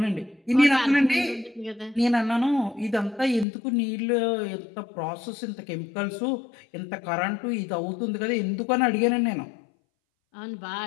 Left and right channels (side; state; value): right; drops out; at 3.5 s